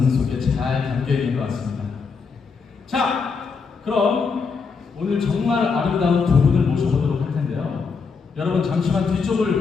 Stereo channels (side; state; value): right; quieter; 5.2 dB